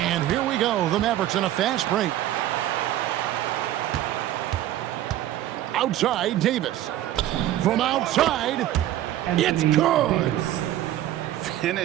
here we go. The Mavericks in a fast break. Outside, Davis. From outside, it's good.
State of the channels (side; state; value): left; quieter; 13.2 dB